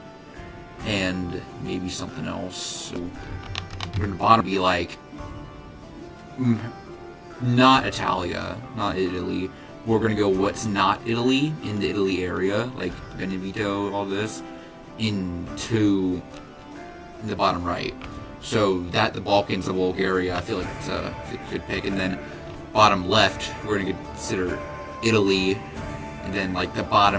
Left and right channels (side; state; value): both; identical; correlation 1.00